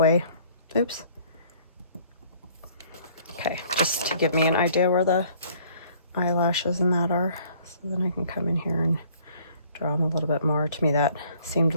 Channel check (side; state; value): both; inverted; correlation -0.58